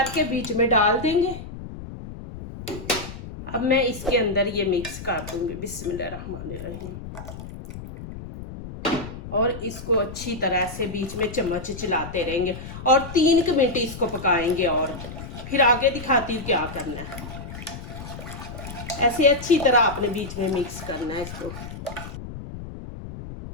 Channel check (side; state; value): left; noise; rumble, 11 dB below the sound